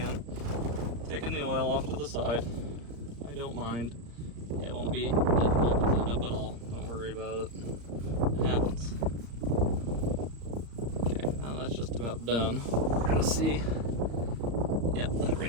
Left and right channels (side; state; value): left; late; 34 ms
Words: Taking the oil off to the side. I don't mind. It won't be difficult to clean up at all. Don't worry about it. It happens. Okay, now that's just about done. We're gonna see. Yep, that